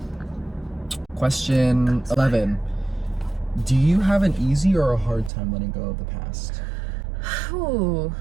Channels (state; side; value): drops out; left; at 5.3 s